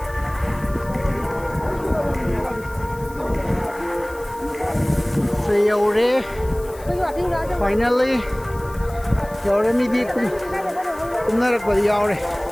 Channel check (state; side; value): noise; left; hiss, 22 dB below the sound